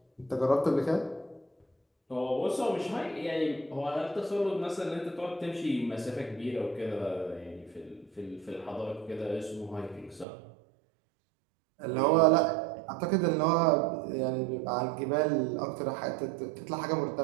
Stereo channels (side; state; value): left; drops out; at 10.2 s